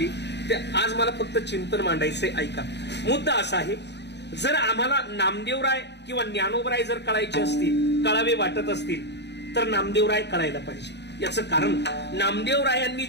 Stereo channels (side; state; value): right; late; 0.50 ms